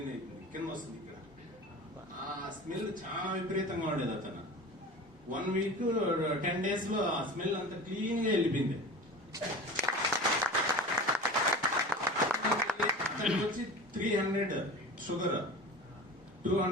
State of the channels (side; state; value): both; normal; correlation 0.34